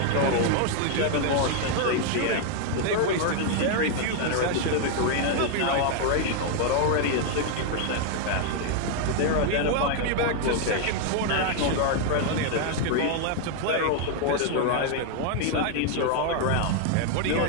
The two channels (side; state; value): both; different; correlation 0.00